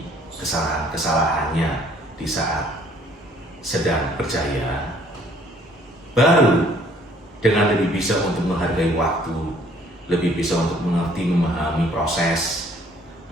kesalahan-kesalahannya di saat sedang berjaya. Baru dengan lebih bisa untuk menghargai waktu, lebih bisa untuk mengerti, memahami proses,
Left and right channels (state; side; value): normal; both; correlation 0.60